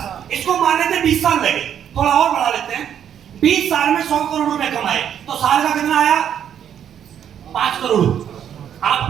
इसको मान लेते 20 साल लगे, थोड़ा और बढ़ा लेते हैं। 20 साल में 100 करोड़ रुपए कमाए, तो साल का कितना आया? 5 करोड़। आप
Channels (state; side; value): quieter; left; 9.2 dB